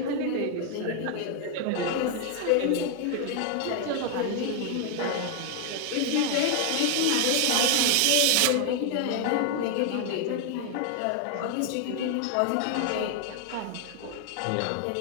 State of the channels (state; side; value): different; both; correlation 0.00